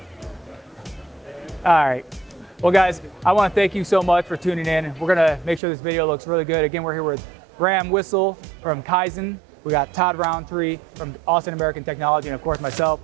All right. Well, guys, I want to thank you so much for tuning in. We're going to make sure this video looks really good. Again, we're here with Wissel from Kyzen. We got Todd Rountree from Austin American Technology, and of course myself,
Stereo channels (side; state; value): left; drops out; at 5.6 s